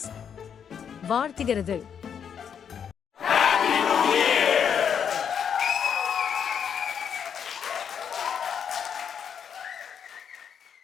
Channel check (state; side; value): quieter; right; 7.7 dB